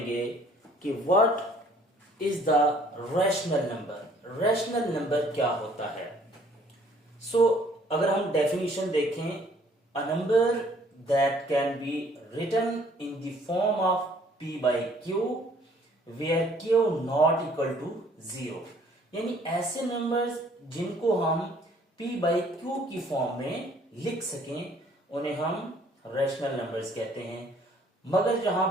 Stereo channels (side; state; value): both; normal; correlation 0.59